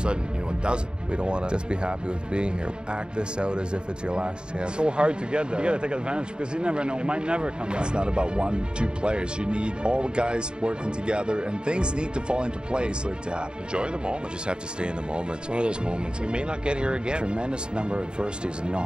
it doesn't. We don't want to just be happy with being here. Act this out as if it's your last chance. It's so hard to get there. You got to take advantage because you never know. It might never come back. It's not about 1-2 players. You need all the guys working together, and things need to fall into place for it to happen. Enjoy the moment. You just have to stay in the moment. It's one of those moments. We may not get here again. Tremendous number of adversities, and you know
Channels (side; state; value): left; late; 0.050 ms